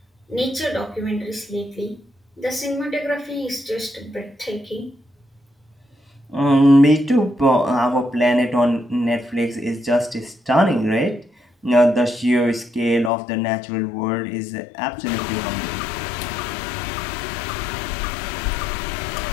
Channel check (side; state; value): right; drops out; at 13.1 s